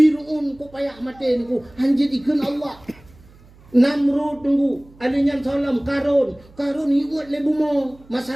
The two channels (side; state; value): right; noise; hum, 26 dB below the sound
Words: kok payah mati ku hanjit ikan Allah, Namrud tunggu alinya salam Karun iut le bumo